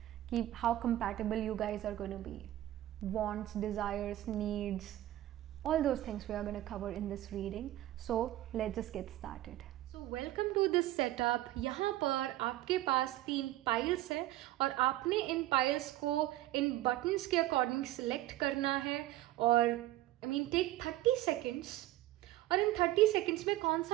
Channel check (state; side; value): quieter; left; 14.9 dB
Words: कि how compatible you guys are going to be. Wants, desires, needs, all those things we are going to cover in this reading. So let's just get started. So welcome to this setup. यहाँ पर आपके पास 3 piles है और आपने इन piles को इन buttons के according select करना है और टेक 30 सेकेंड्स और इन 30 सेकेंड्स में कौन